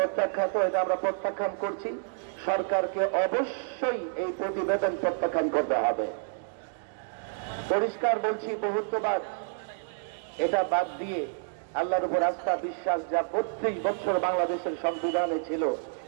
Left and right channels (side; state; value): left; silent; digital silence